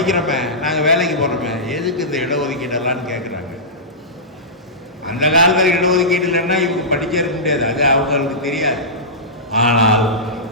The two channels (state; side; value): normal; both; correlation -0.17